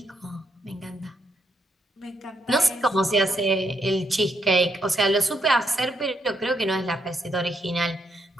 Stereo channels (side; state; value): both; normal; correlation 0.78